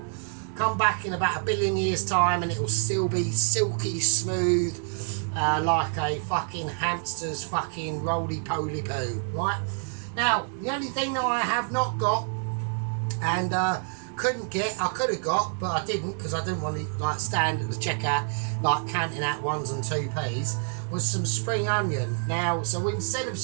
come back in about 1 billion years time and it will still be silky smooth, like a fucking hamster's fucking roly-poly poo, right? Now, the only thing that I have not got and couldn't get, I could have got, but I didn't because I didn't want to like stand at the checkout like counting out 1s and 2p's, was some spring onion. Now, so instead of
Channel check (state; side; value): silent; left; 60 dB below the other